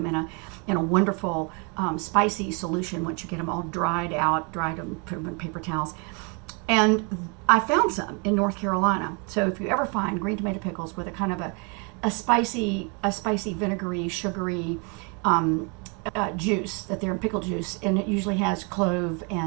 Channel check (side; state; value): left; quieter; 33.9 dB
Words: in a wonderful spicy solution once you get them all dried them, put them in paper towels. And I found some in North Carolina. So if you ever find green tomato pickles with a kind of a spicy vinegary, sugary juice, that they're in pickle juice, and it usually has clove